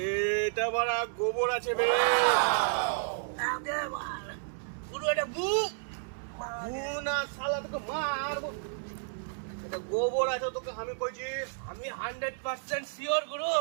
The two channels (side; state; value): left; silent; 57 dB below the other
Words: বড় গোবর আছে রে। গুরু এটা না শালা তোকে মারবো। এটা গোবর আছে তোকে আমি কইছি। আমি 100% শিওর গুরু